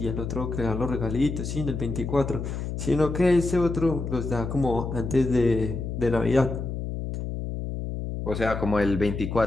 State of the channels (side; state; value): left; noise; hum, 5 dB below the sound